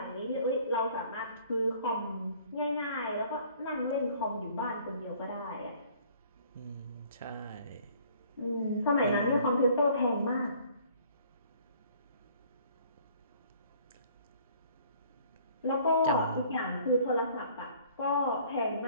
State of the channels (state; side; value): inverted; both; correlation -0.56